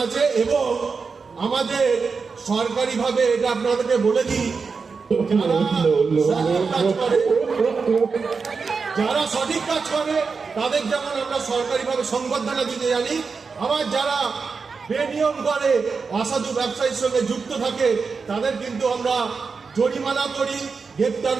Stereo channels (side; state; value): left; quieter; 5.0 dB